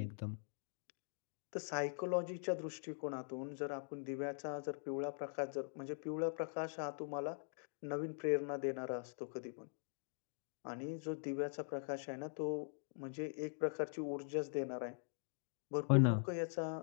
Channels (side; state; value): right; silent; digital silence